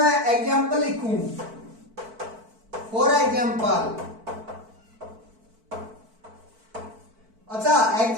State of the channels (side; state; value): left; late; 4.5 ms